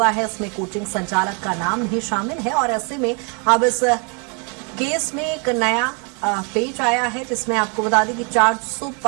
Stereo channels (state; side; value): quieter; left; 35.7 dB